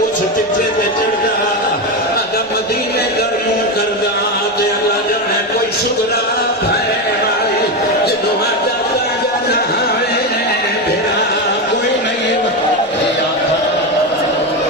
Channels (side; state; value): both; normal; correlation 0.14